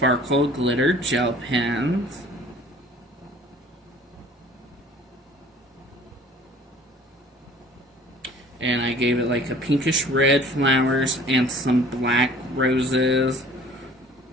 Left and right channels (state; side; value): normal; both; correlation 0.50